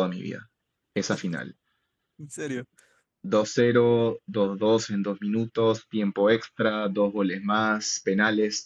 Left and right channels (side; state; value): both; identical; correlation 1.00